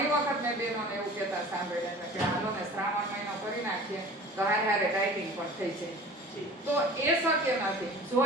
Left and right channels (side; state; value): both; normal; correlation 0.42